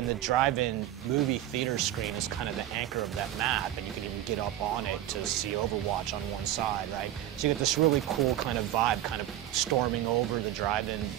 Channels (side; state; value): left; quieter; 12.8 dB